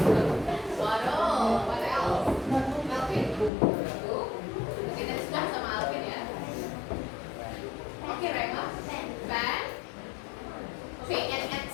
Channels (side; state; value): right; drops out; at 3.5 s